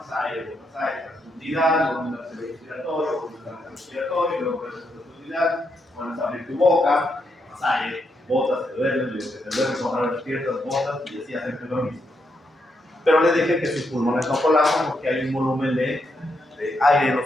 aire, profundidad, volumen respiratorio, volumen respiratorio, luego profundidad, pones a abrir tu boca, tomas aire, botas, te duermes, ahora despiertas, botas y así hacerte dormir. Pero les dije que sus pulmones no colapsan porque hay un volumen de aire en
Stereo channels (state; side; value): normal; both; correlation 0.80